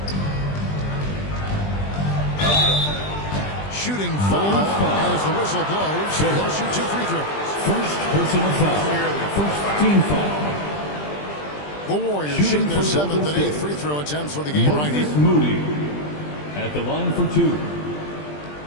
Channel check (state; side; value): late; right; 20 ms